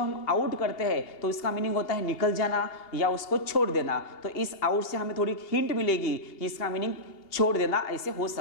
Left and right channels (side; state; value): right; late; 2.8 ms